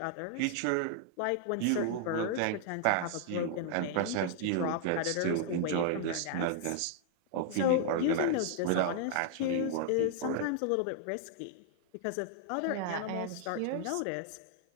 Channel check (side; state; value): both; different; correlation 0.00